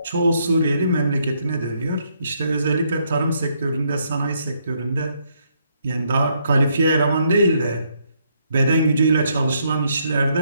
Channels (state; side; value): inverted; both; correlation -0.74